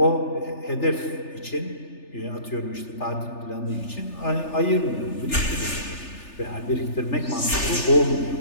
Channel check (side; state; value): right; late; 3.4 ms